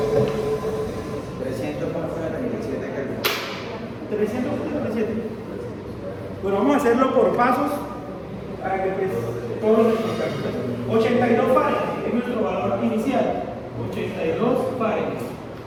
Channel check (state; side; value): identical; both; correlation 1.00